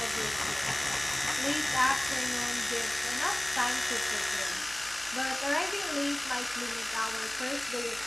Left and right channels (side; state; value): right; noise; hum, 27 dB below the sound